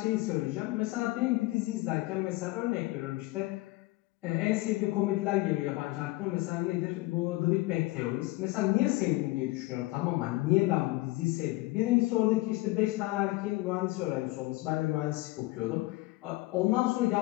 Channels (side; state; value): right; quieter; 20.5 dB